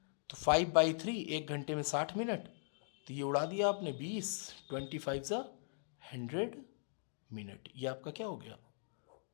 तो 5/3, एक घंटे में 60 मिनट, तो ये उड़ा दिया आपने 20, 25 ज़ा 100 मिनट। ये आपका क्या हो गया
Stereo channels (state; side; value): silent; right; digital silence